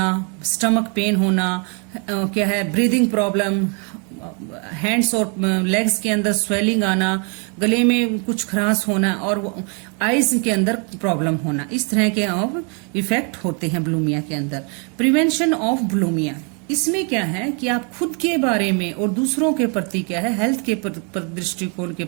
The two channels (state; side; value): quieter; left; 37.0 dB